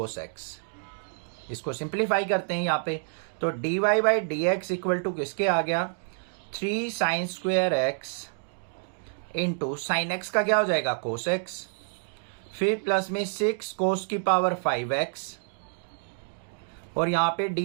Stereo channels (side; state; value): left; silent; digital silence